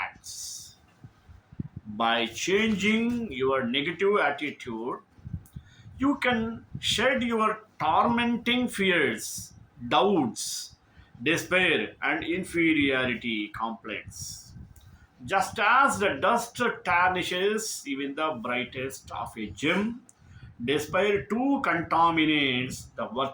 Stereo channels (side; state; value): both; identical; correlation 1.00